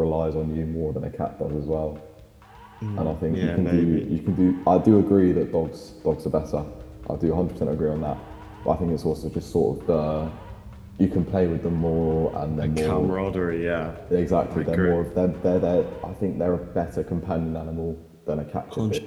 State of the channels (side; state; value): both; identical; correlation 1.00